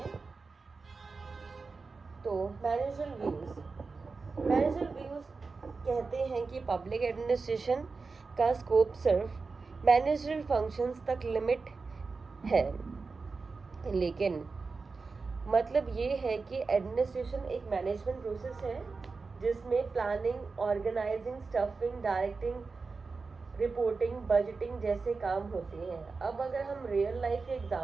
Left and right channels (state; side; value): quieter; left; 4.3 dB